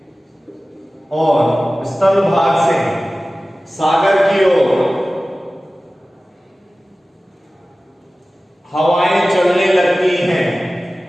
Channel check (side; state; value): both; normal; correlation 0.96